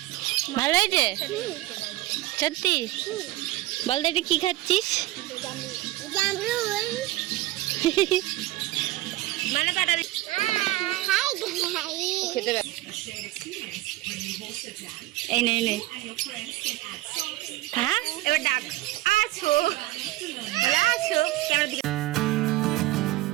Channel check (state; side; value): quieter; left; 17.4 dB